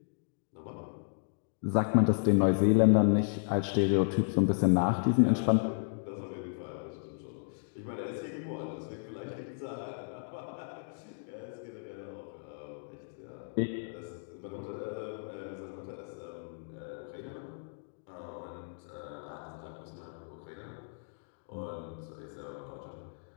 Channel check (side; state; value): right; silent; digital silence